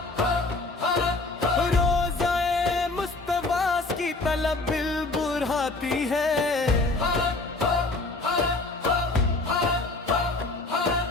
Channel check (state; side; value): quieter; right; 3.3 dB